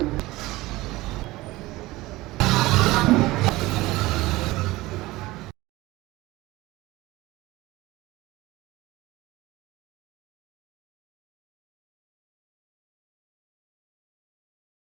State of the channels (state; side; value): quieter; left; 19.3 dB